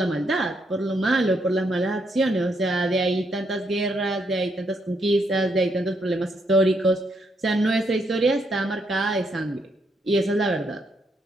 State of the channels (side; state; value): both; normal; correlation 0.76